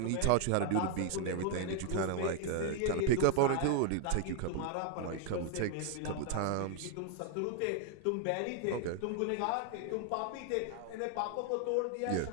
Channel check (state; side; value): different; both; correlation 0.00